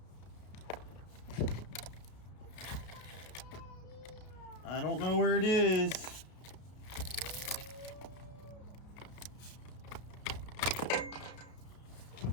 I don't know where it is.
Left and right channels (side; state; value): right; late; 33 ms